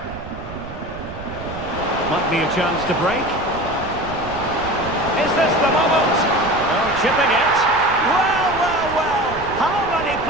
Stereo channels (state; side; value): noise; right; rumble, 14 dB below the sound